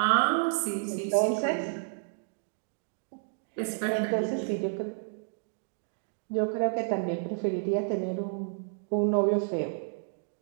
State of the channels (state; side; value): silent; left; digital silence